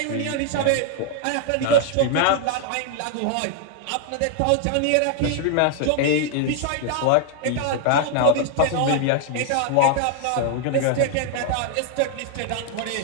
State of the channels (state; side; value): different; both; correlation 0.00